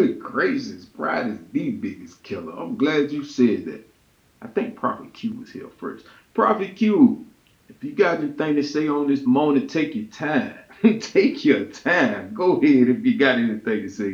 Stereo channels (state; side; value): identical; both; correlation 1.00